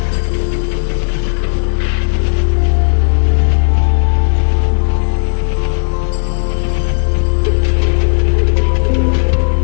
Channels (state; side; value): silent; right; digital silence